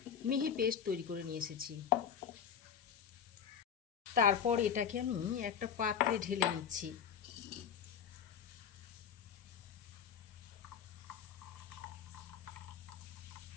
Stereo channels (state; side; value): quieter; right; 7.9 dB